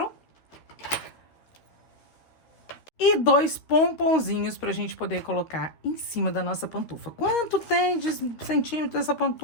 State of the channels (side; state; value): right; late; 12 ms